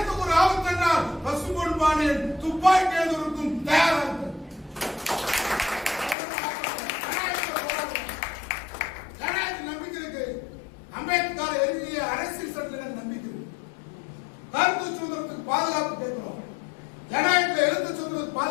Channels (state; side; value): drops out; right; at 6.2 s